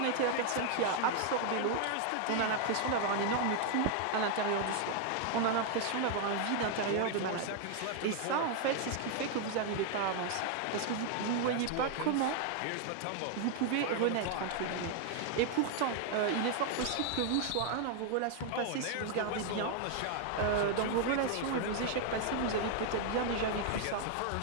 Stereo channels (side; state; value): both; different; correlation 0.00